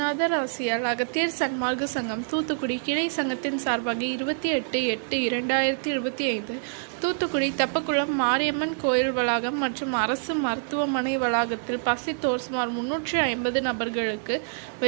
ஆசியால் அகத்தியர் சன்மார்க்க சங்கம் தூத்துக்குடி கிளை சங்கத்தின் சார்பாக 28/8/2025 தூத்துக்குடி தெப்பக்குளம் மாரியம்மன் கோயில் வளாகம் மற்றும் அரசு மருத்துவமனை வளாகத்தில் பசித்தோர் சுமார் 350 நபர்களுக்கு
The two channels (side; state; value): left; silent; digital silence